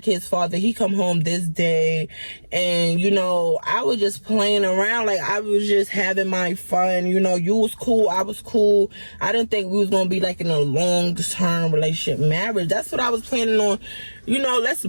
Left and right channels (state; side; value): inverted; both; correlation -1.00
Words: kid's father. He come home this day, and you know, I was just playing around. Like, I was just having my fun. You know, you was cool, I was cool. I didn't think we was gonna be like in a long-term relationship, marriage. That's what I was planning on. You know, let's